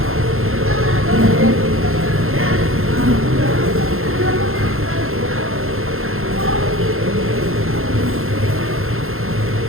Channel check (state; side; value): late; left; 0.61 ms